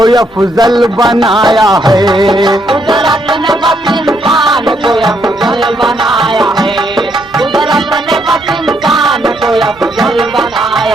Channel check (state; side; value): normal; both; correlation 0.74